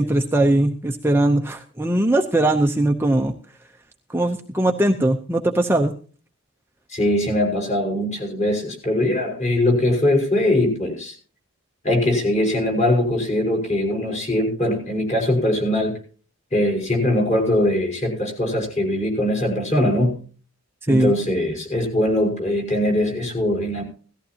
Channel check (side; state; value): both; normal; correlation 0.67